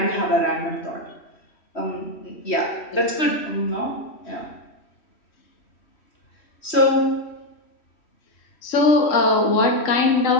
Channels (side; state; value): right; late; 3.1 ms